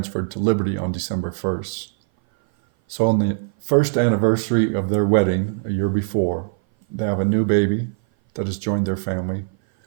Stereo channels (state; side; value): silent; left; 58 dB below the other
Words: to Liberty on December 1st. So on the first anniversary of their wedding, a year before, they have a new baby that has joined their family,